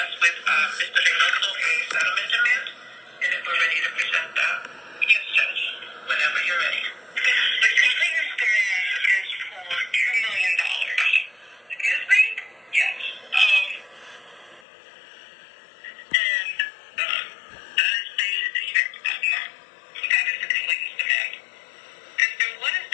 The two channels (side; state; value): right; drops out; at 14.7 s